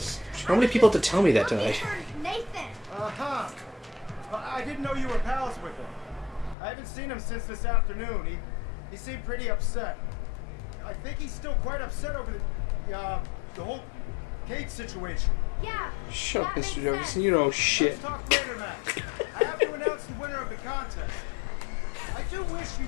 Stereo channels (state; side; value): drops out; right; at 6.6 s